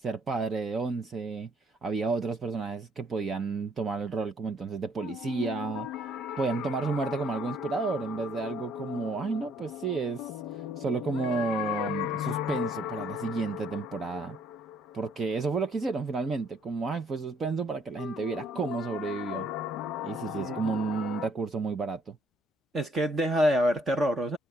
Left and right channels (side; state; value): both; normal; correlation 0.65